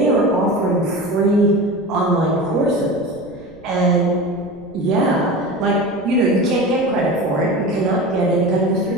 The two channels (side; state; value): right; noise; rumble, 26 dB below the sound